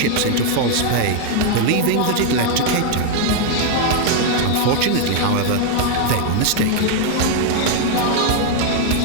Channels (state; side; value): different; both; correlation 0.00